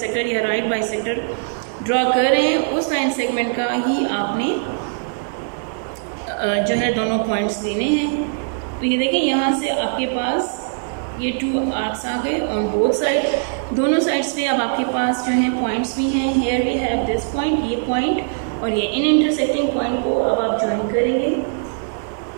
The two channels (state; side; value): silent; left; digital silence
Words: या राइट बाइसेक्टर ड्रॉ कर रहे हैं, उस लाइन सेगमेंट का ही आपने जो है दोनों पॉइंट्स लेने हैं। तो ये देखें, यहाँ से आपके पास ये 2 आर्क्स आ गए ऑन बोथ साइड। दोनों साइड्स पे अब आपके पास जो हैं पॉइंट्स भी हैं। Here we have this point, ये पॉइंट और ये इन इंटरसेक्टिंग पॉइंट को अब आप ज्वाइन करेंगे